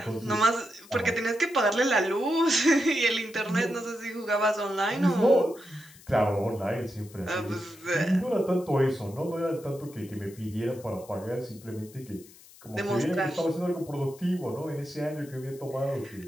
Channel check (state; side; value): noise; left; hiss, 22 dB below the sound